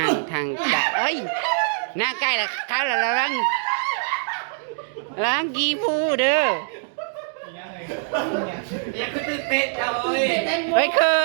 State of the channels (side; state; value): left; silent; digital silence